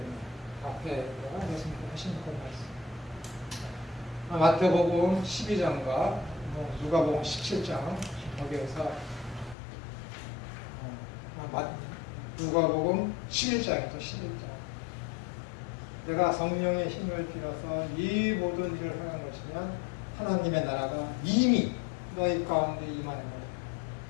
앞에 예수님께서 하신 그 말씀. 마태복음 12장과 누가복음 17장 거기에서 누가복음 11장이죠. 11장. 내가 성령의 힘을 빌어서 이 모든 일을 하는 것이면 하나님의 나라가 이미 너희 가운데 임하는 거예요.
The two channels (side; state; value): right; drops out; at 9.6 s